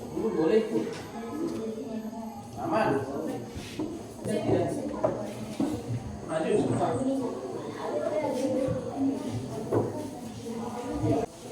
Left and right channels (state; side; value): identical; both; correlation 1.00